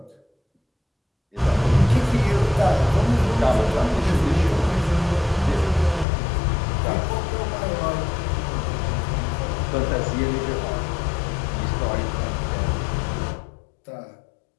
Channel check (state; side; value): drops out; right; at 6.1 s